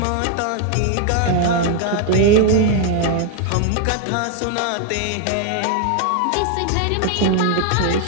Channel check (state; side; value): different; both; correlation 0.00